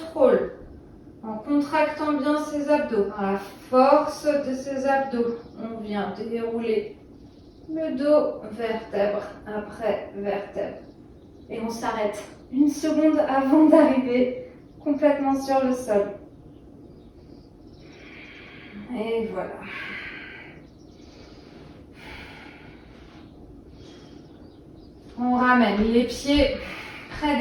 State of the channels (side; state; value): both; identical; correlation 1.00